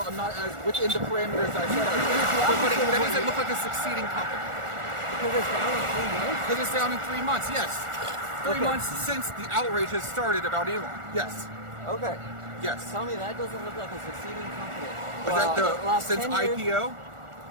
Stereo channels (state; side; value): late; left; 1.4 ms